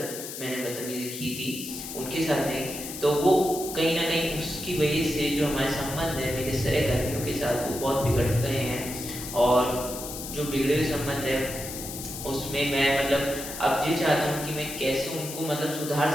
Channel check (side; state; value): left; noise; hiss, 9 dB below the sound